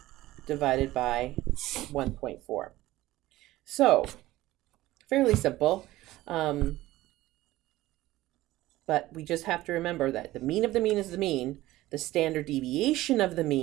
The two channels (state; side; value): quieter; left; 16.7 dB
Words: divided by 1.4. So, fairly simple. But we just have to remember that the mean of the mean is the mean. The standard deviation of the